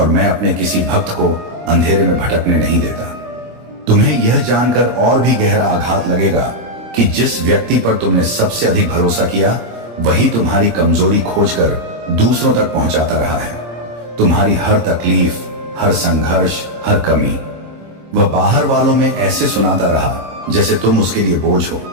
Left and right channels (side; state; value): left; late; 26 ms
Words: मैं अपने किसी भक्त को अंधेरे में भटकने नहीं देता। तुम्हें यह जानकर और भी गहरा आघात लगेगा कि जिस व्यक्ति पर तुमने सबसे अधिक भरोसा किया वही तुम्हारी कमजोरी खोजकर दूसरों तक पहुंचाता रहा है। तुम्हारी हर तकलीफ, हर संघर्ष, हर कमी वह बाहर वालों में ऐसे सुनाता रहा जैसे तुम उसके लिए बोझ हो,